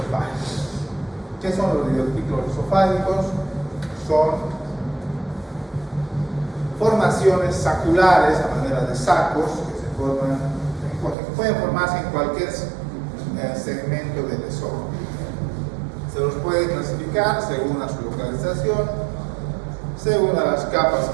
¿Qué son los divertículos esofágicos? Son formaciones saculares a manera de sacos que se forman, que pueden formarse en cualquier segmento del esófago. Se los puede clasificar según a su localización, según a las capas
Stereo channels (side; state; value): left; drops out; at 11.2 s